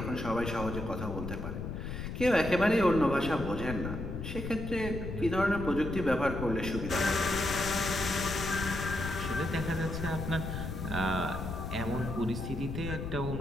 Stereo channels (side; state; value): left; noise; rumble, 5 dB below the sound